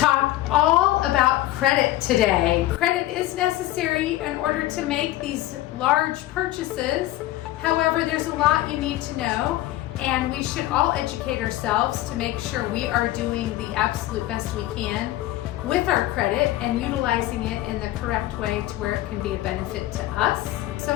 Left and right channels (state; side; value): quieter; right; 15.6 dB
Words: all about credit today. Credit is necessary in order to make these large purchases. However, there's a lot you need to know, and we should all educate ourselves to make sure we are doing the absolute best we can with our credit and utilizing it in the correct way to where it can be a benefit to us. So